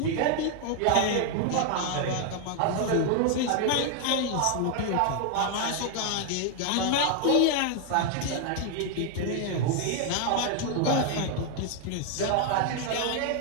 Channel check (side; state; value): both; different; correlation 0.00